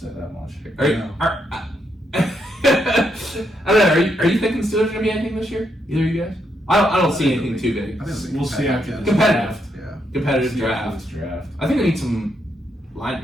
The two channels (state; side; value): normal; both; correlation 0.79